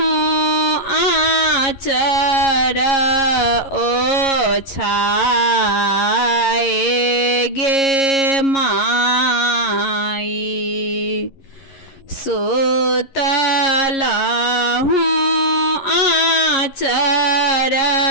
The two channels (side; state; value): right; late; 11 ms